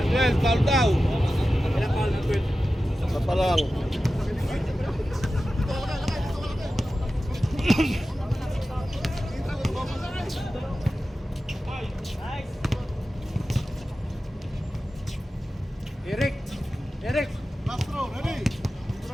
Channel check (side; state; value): both; normal; correlation 0.94